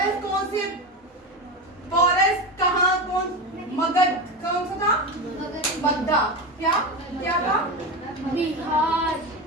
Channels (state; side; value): normal; both; correlation 0.20